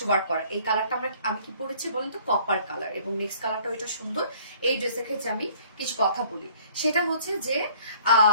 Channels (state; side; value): inverted; both; correlation -0.55